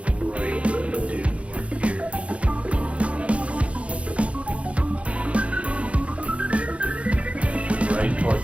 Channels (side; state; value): left; late; 0.062 ms